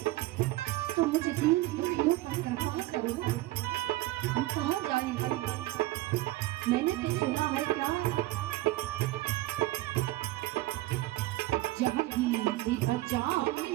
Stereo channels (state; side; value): quieter; left; 17.7 dB